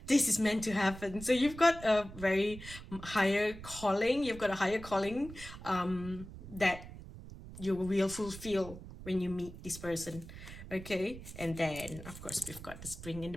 this is meant to happen. So you've got a very higher calling. You've got a higher calling that you will fulfill when you meet this person. Okay, and then of course we've got the spring and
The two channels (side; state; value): right; noise; rumble, 13 dB below the sound